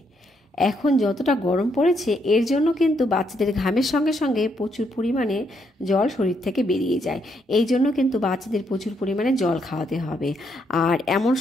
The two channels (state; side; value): normal; both; correlation 0.75